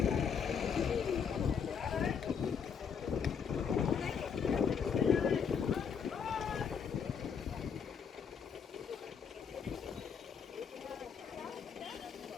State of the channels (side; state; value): right; quieter; 6.8 dB